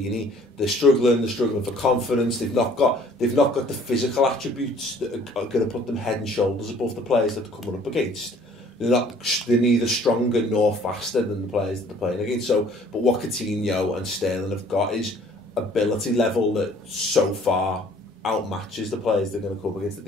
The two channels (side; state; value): both; normal; correlation 0.56